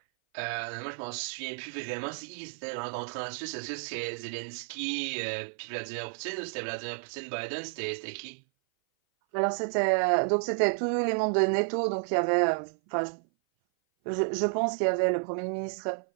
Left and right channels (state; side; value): silent; left; 56 dB below the other